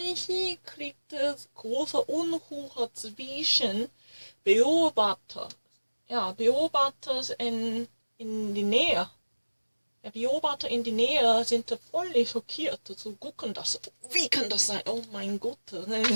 kriegt es große Unruhe zwischen Beobachter in die Nähe. Der Beobachter in die Nähe sind völlig schockiert. So gucken das. Wie kann das sein? Oh mein Gott.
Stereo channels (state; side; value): inverted; both; correlation -1.00